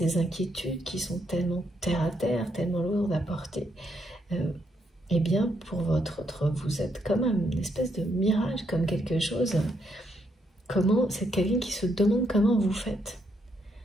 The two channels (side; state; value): both; normal; correlation 0.76